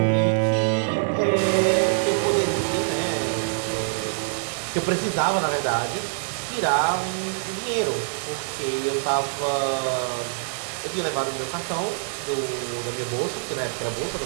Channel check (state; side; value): silent; left; digital silence